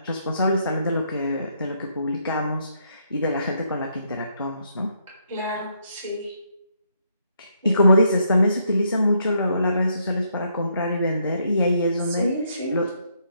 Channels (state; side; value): inverted; both; correlation -0.74